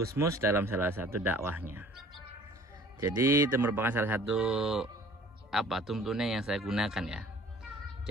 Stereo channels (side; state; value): both; normal; correlation 0.51